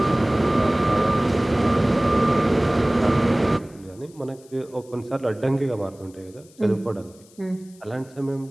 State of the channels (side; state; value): left; noise; hiss, 27 dB below the sound